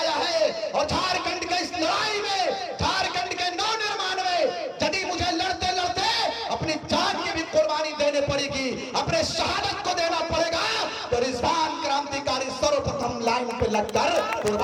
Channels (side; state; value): both; identical; correlation 1.00